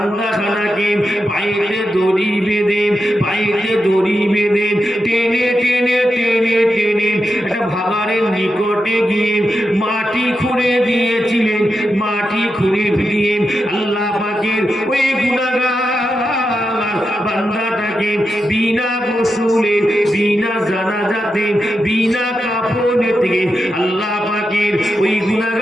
পায়েতে দড়ি বেঁধে টেনে টেনে টেনে টেনে একটা ভাগাড়ের নিকটে গিয়ে মাটি খুঁড়ে দিয়েছিলেন। মাটি খুঁড়ে দিয়ে আল্লাহ পাকের ওই গুনাহগার বান্দাটাকে বিনা গোসলে, বিনা জানাজাতে, বিনা কাফনে থেকে আল্লাহ পাকের ওই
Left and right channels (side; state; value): both; normal; correlation 0.88